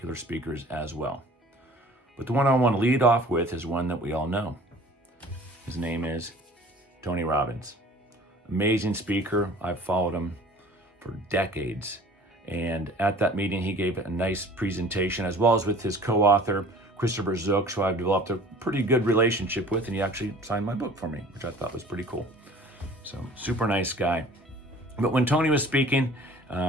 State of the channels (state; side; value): normal; both; correlation 0.48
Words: speakers as well. But the one I want to lead off with is one that we all know. His name is Tony Robbins. Amazing speaker. I've followed him for decades. And at that meeting, he gave a nice presentation, as well as with his co-author, Christopher Zook, who I've developed a pretty good relationship with, and he actually signed my book for me, which I thought was pretty cool. So super nice guy. But when Tony was speaking,